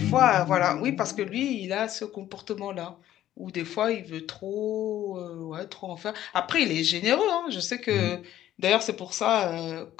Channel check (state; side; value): quieter; right; 12.7 dB